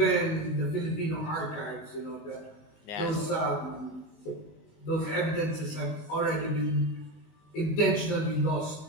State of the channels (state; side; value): late; right; 19 ms